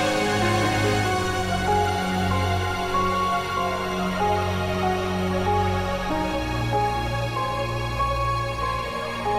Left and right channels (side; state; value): both; identical; correlation 1.00